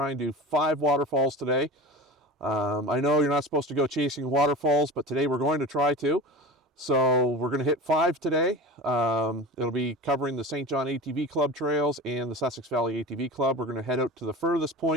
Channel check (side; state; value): both; normal; correlation 0.32